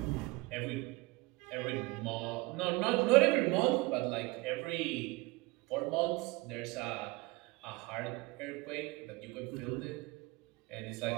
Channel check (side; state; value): left; quieter; 22.9 dB